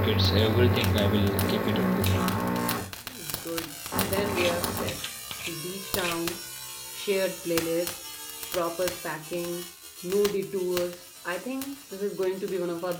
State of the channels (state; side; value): identical; both; correlation 1.00